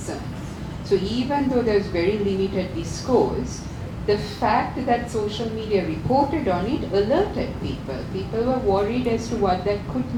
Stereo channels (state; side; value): identical; both; correlation 1.00